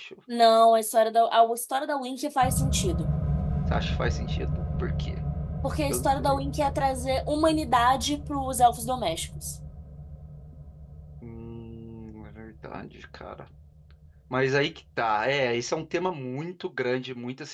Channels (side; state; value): both; identical; correlation 1.00